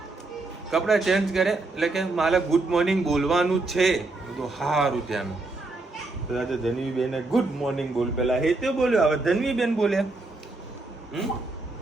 કપડાં ચેન્જ કરે એટલે કે મારે ગુડ મોર્નિંગ બોલવાનું છે. તો સારું ત્યાં તો ધનવીબેન ગુડ મોર્નિંગ બોલ, પેલા હે તે બોલ્યો, હવે ધનવીબેન બોલ્યા.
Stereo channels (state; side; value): quieter; left; 3.2 dB